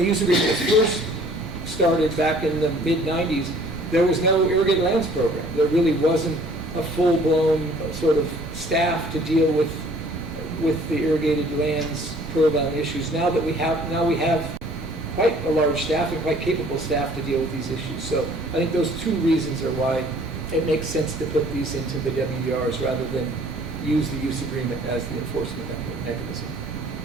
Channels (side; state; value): both; normal; correlation 0.54